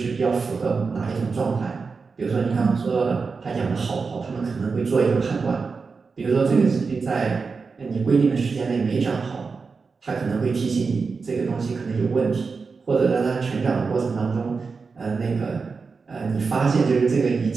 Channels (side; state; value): left; quieter; 4.8 dB